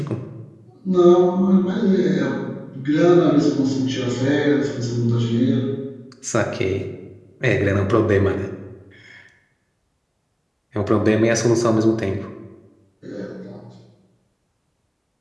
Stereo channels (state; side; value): identical; both; correlation 1.00